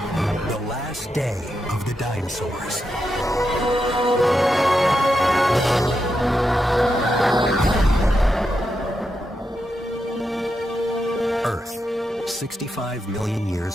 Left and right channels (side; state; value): both; normal; correlation 0.86